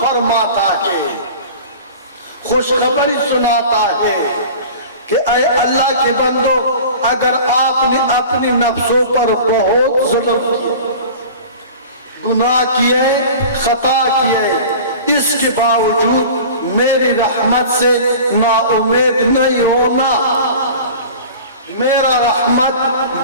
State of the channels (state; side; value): inverted; both; correlation -0.39